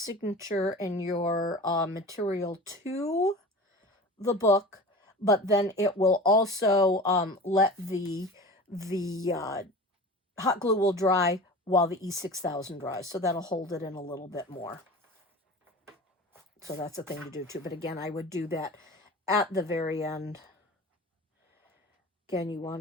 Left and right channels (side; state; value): both; normal; correlation 0.35